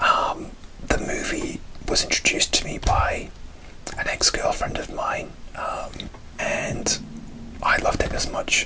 movie was introduced to me by an ex-girlfriend of mine, and I loved it as much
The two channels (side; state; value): both; identical; correlation 1.00